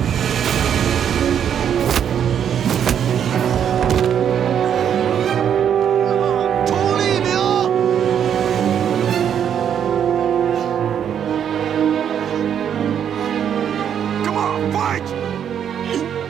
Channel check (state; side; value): quieter; left; 8.8 dB